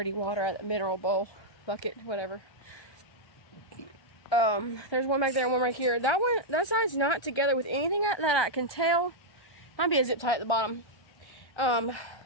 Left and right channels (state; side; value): late; right; 1.2 ms